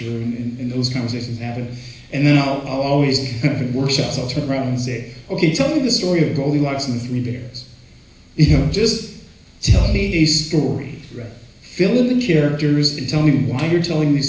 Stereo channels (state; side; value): identical; both; correlation 1.00